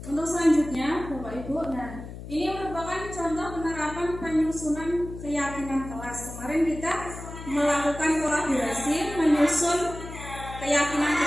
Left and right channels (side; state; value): left; noise; hum, 11 dB below the sound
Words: Untuk selanjutnya Bapak Ibu, nah ini merupakan contoh penerapan penyusunan keyakinan kelas. Kemarin kita melakukan kolaborasi menyusun keyakinan